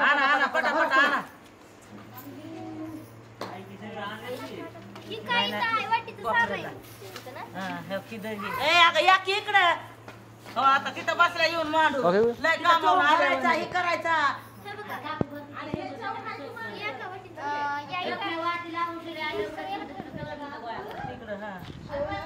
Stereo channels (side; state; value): both; identical; correlation 1.00